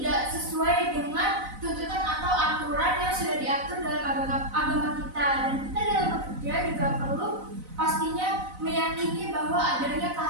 sesuai dengan tuntutan atau aturan yang sudah diatur dalam agama kita. Dan kita dalam bekerja juga perlu pastinya meyakini bahwa adanya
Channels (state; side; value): late; left; 4.0 ms